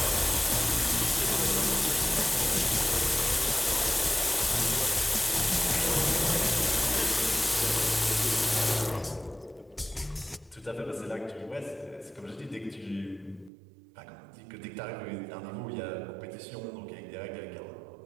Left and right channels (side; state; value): left; drops out; at 13.5 s